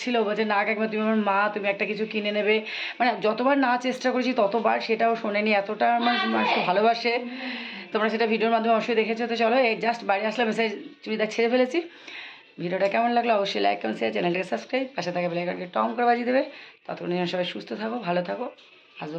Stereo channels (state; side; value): identical; both; correlation 1.00